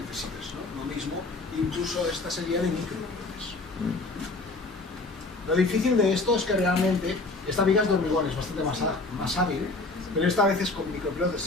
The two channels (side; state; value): right; quieter; 3.3 dB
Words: ¿no? Lo mismo, incluso esta sería de micropilotes. Lo difícil de esto es que realmente esta viga es de hormigón, es bastante más hábil, pero esta vez es con